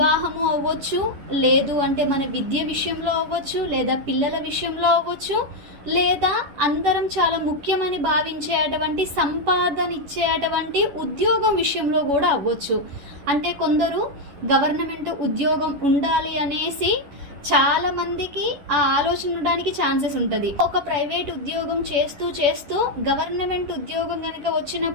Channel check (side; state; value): left; late; 11 ms